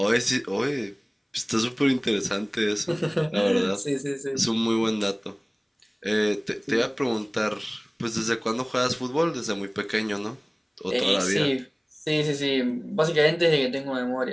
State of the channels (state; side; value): identical; both; correlation 1.00